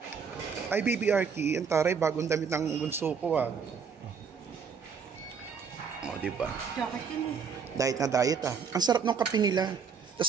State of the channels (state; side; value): quieter; left; 6.3 dB